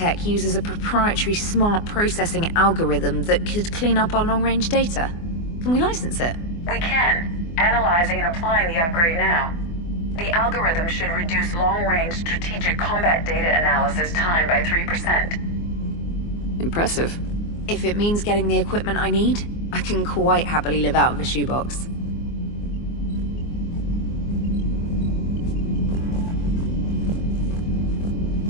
uses a proprietary smart processing algorithm that could clean up our long-range data. Can we license it? We can. Analyzing and applying the upgrade now. The algorithm should reduce long-range strategic combat data analysis time by 3%. Impressive. If it means getting the equipment I need, I can quite happily live out of a shoebox.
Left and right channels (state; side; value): late; right; 24 ms